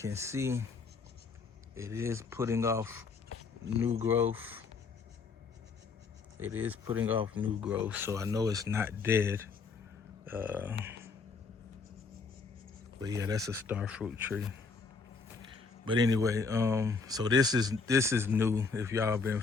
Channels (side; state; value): right; quieter; 4.7 dB